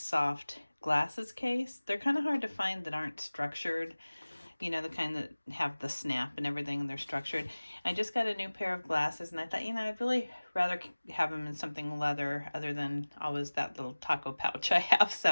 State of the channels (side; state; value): both; inverted; correlation -1.00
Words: soft glasses case. They're kind of hard to find that aren't structured. You know, the kind that have the snap and everything, and they're structured. I just got a new pair of glasses, and I thought, you know, I'd really rather have them in something leather other than always that little taco pouch I have.